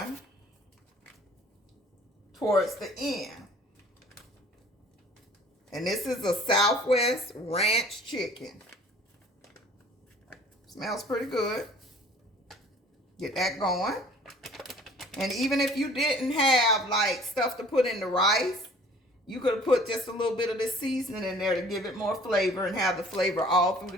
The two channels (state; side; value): normal; both; correlation 0.51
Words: towards the end. And this is a Southwest Ranch chicken. Smells pretty good. Get that going. And even if you didn't have like stuff to put in the rice, you could have put just a little bit of this seasoning in there to give it more flavor and have the flavor all through